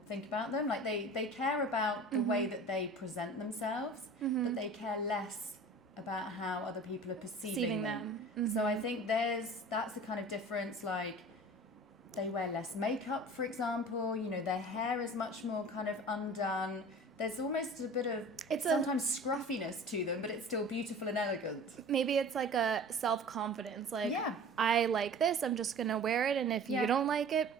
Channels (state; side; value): normal; both; correlation 0.42